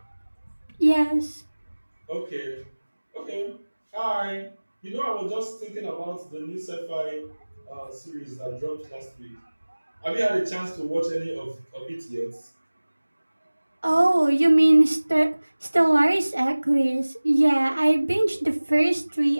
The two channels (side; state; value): both; inverted; correlation -1.00